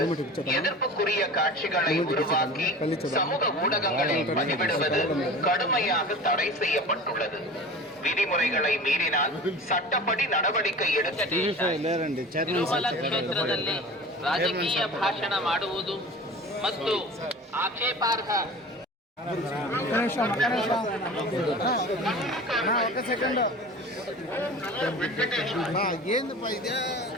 எதிர்ப்புக்குரிய காட்சிகளை உருவாக்கி சமூக ஊடகங்களில் பதிவிடுவது கடுமையாக தடை செய்யப்பட்டுள்ளது. ವಿಧಿಮುறைகளை ಮೀರಿனால் ಚಟ್ಟಪಡಿ நடவடிக்கை எடுக்க. ತಿರುಮಲ ಕ್ಷೇತ್ರದಲ್ಲಿ ರಾಜಕೀಯ ಭಾಷಣ ಮಾಡುವುದು ಮತ್ತು ಆಕ್ಷೇಪಾರ್ಹ ఒక సెకండ్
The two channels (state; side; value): normal; both; correlation 0.37